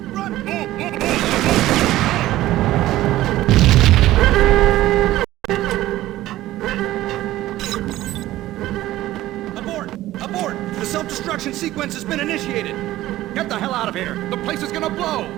Run! Abort! The self-destruction sequence has been initiated! Get the hell out of here! The place is gonna blow!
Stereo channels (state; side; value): quieter; left; 15.4 dB